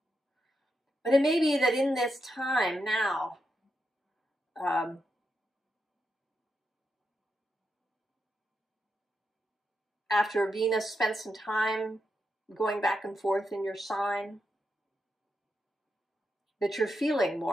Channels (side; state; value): both; normal; correlation 0.84